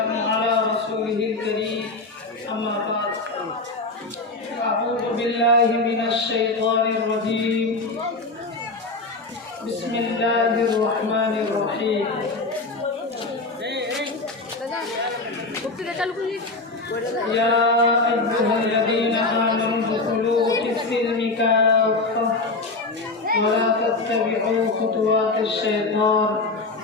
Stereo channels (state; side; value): quieter; right; 3.4 dB